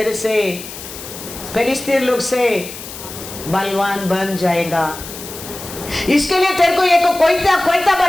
से फिलिस्तीन लोग से बलवान बन जाएगा। इसके लिए तेरे को एक कोयता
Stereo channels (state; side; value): noise; left; hiss, 12 dB below the sound